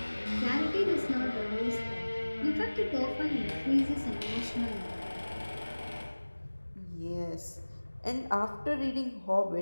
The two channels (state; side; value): inverted; both; correlation -1.00